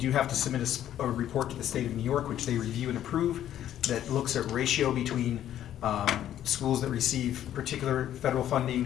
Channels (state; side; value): quieter; right; 11.4 dB